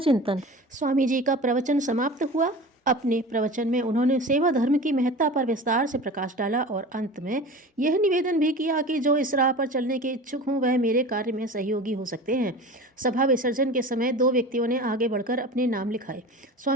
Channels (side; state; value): both; normal; correlation 0.35